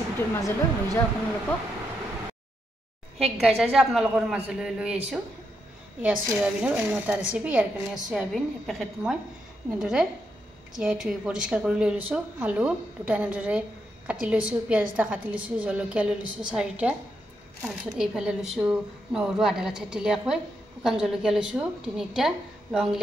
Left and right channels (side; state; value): both; normal; correlation 0.81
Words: মাজলৈ লৈ যাও আপোনালোকক হেক গাইজ আজি আপোনালোকৰ মাজলৈ লৈ আহিছো ইয়া সয়াবিনৰ অন্য এটা ৰেচিপি ইয়াৰ কাৰণে সয়াবিন পেকেট মই এনেদৰে তিয়াই থৈ পৰিষ্কাৰ কৰি লৈ লৈছো আলু দুটা এনেদৰে কাটি লৈছো পিয়াজ এটা কাটি লৈছো জলকীয়া লৈ লৈছো 4টা তাৰপিছত এইফালে লৈছো নহৰু আধা থেতেলিয়াকৈ শুকান জলকীয়া লৈছো 3টা লং